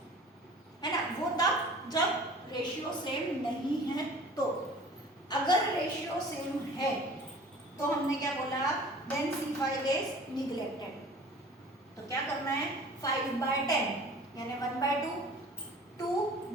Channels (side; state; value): both; normal; correlation 0.45